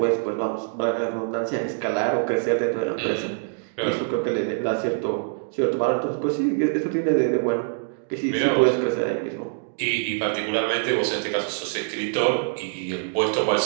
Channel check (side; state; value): left; silent; digital silence